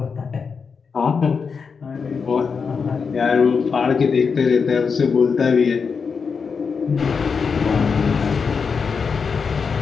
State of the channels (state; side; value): quieter; right; 5.6 dB